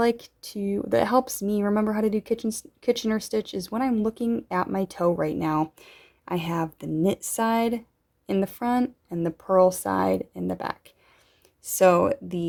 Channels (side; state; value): both; identical; correlation 1.00